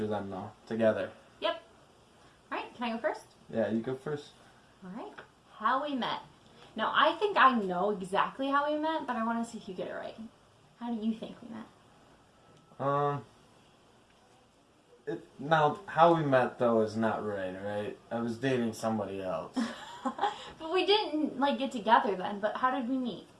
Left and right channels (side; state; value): both; identical; correlation 1.00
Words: them though, together. Yep. Alright, can I go first? Yeah, you go first. Alright. How we met. Now, I think I know exactly how we met, but I want to see if you get it right. How do you think we met? Now, how we met though is not right? I was dating somebody else. But we didn't, like, get together then, but how did we meet?